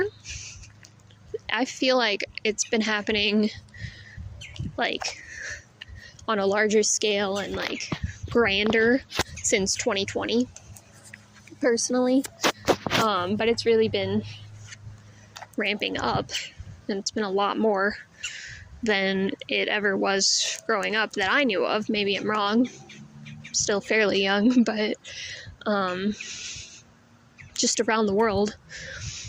I feel like it's been happening like on a larger scale and like grander since 2020, personally. But it's really been ramping up, and it's been a lot more than it ever was growing up that I knew of. Maybe I'm wrong. I'm still fairly young, but just around the world,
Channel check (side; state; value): both; identical; correlation 1.00